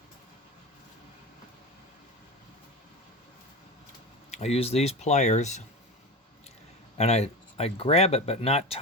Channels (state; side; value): normal; both; correlation 0.26